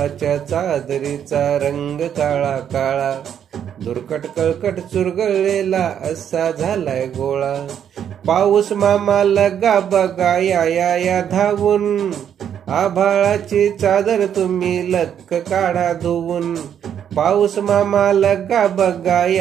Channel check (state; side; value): quieter; left; 9.0 dB